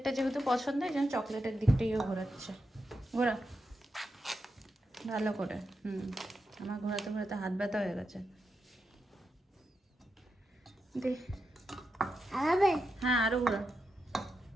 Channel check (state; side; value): normal; both; correlation 0.87